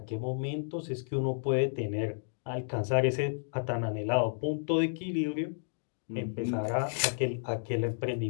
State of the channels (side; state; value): right; silent; digital silence